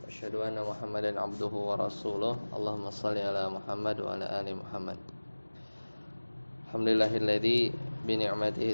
Asyhadu anna Muhammadan abduhu wa rasuluh. Allahumma shalli ala Muhammad wa ala ali Muhammad. Alhamdulillahilladzi bi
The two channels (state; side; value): inverted; both; correlation -1.00